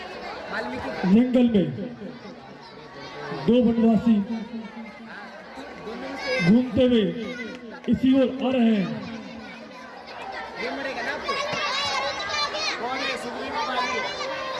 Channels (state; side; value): identical; both; correlation 1.00